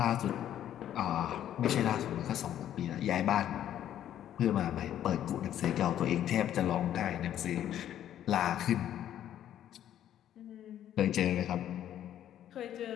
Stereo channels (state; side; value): quieter; right; 11.1 dB